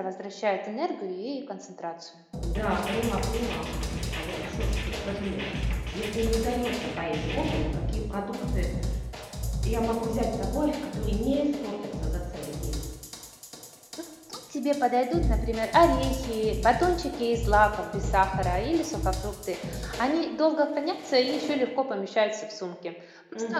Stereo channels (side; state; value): both; identical; correlation 1.00